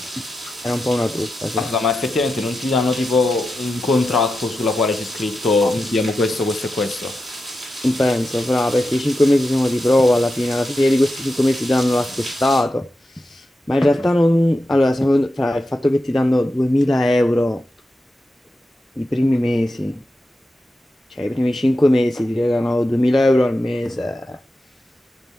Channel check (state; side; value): normal; both; correlation 0.90